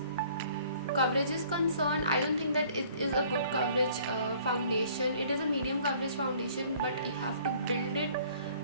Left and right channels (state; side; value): inverted; both; correlation -0.56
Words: coverage is concerned, I don't think that it is a good coverage foundation. It is a medium coverage foundation, but you have to build it